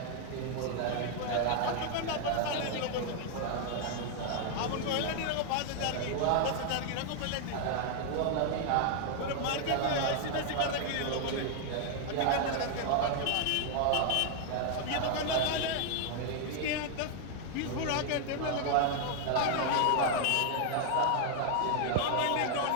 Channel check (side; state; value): both; different; correlation 0.00